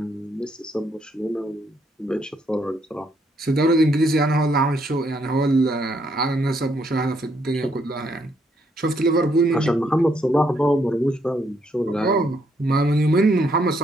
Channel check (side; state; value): both; normal; correlation 0.73